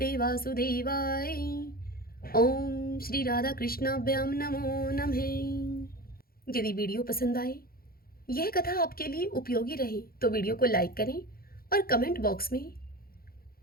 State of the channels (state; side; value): late; right; 0.43 ms